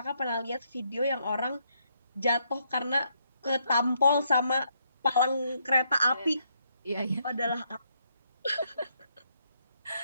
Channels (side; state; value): both; inverted; correlation -0.75